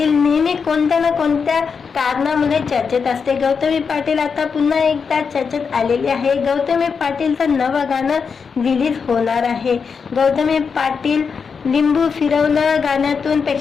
नेहमी कोणत्या ना कोणत्या कारणामुळे चर्चेत असते। गौतमी पाटील आता पुन्हा एकदा चर्चेत आलेली आहे। गौतमी पाटीलचं नवं गाणं रिलीज होणार आहे। गौतमी पाटील लिंबू फिरवलं गाण्यातून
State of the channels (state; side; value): quieter; right; 5.8 dB